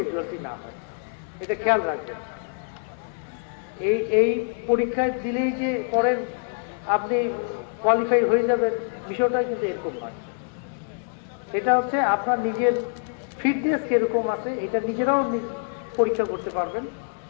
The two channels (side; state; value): right; silent; 61 dB below the other